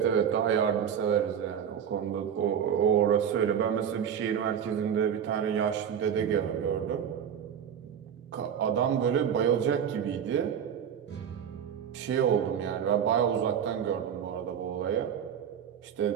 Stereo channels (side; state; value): left; quieter; 8.4 dB